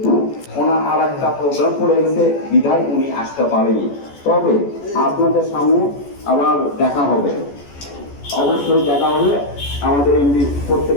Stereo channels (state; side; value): late; right; 14 ms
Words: ওনার আর একটা প্রোগ্রাম পড়ে গেছে, বিধায় উনি আসতে পারেনি। তবে আপনাদের সামনে আবার দেখা হবে, অবশ্যই দেখা হলে আমাদের এমনি